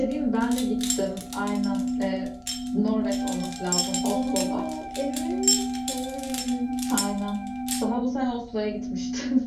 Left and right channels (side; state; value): both; identical; correlation 1.00